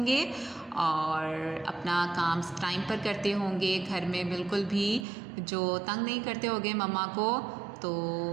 گے اور اپنا کام ٹائم پر کرتے ہوں گے، گھر میں بالکل بھی جو تنگ نہیں کرتے ہوگے مما کو تو،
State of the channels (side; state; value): left; drops out; at 5.1 s